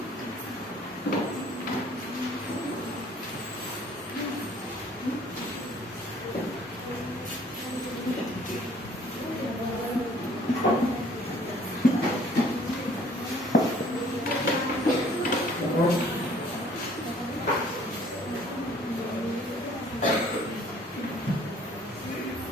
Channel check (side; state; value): both; normal; correlation 0.56